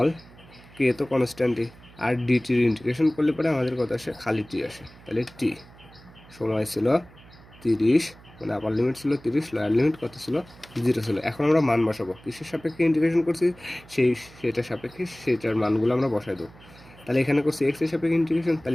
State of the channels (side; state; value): right; noise; hum, 23 dB below the sound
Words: কে তো কনস্ট্যান্টই, আর ডিটির ইন্টিগ্রেশন করলে পরে আমাদের কত আসে, খালি টি আসে। তাহলে টি সময় ছিল 30, মানে আপার লিমিট ছিল 30, লোয়ার লিমিট কত ছিল, 0 ছিল। এখন আমরা মান বসাবো, কিসের সাপেক্ষে ইন্টিগ্রেশন করছি, সেটার সাপেক্ষে সেটার মানগুলো আমরা বসাই দেবো। তাহলে এখানে করছি এক্স এর সাপেক্ষে ইন্টিগ্রেশন,